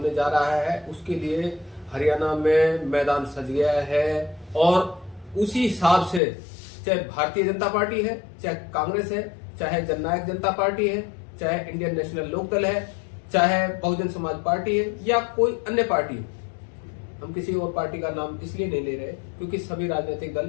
जा रहा है, उसके लिए हरियाणा में मैदान सज गया है और उसी हिसाब से चाहे भारतीय जनता पार्टी है, चाहे कांग्रेस है, चाहे जननायक जनता पार्टी है, चाहे इंडियन नेशनल लोकदल है, चाहे बहुजन समाज पार्टी है या कोई अन्य पार्टी है। हम किसी और पार्टी का नाम इसलिए नहीं ले रहे क्योंकि सभी राजनीतिक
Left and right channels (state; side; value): drops out; right; at 6.2 s